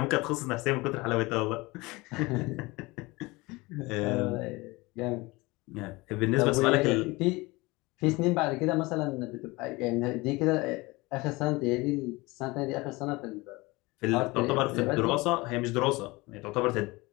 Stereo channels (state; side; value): quieter; right; 22.9 dB